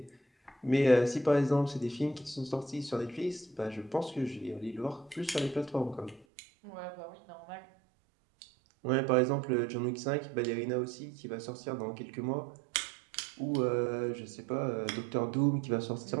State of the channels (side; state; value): left; drops out; at 6.2 s